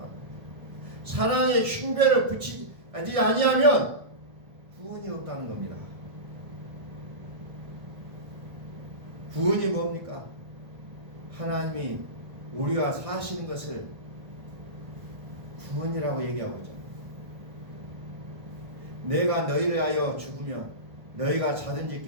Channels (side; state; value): left; late; 1.6 ms